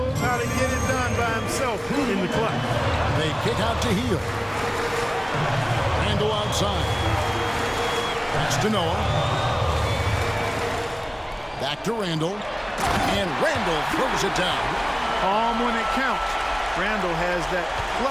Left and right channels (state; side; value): identical; both; correlation 1.00